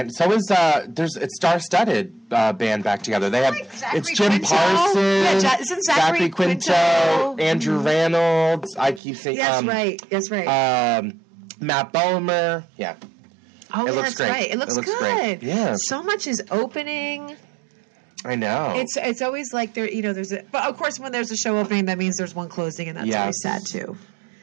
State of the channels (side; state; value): left; drops out; at 9.0 s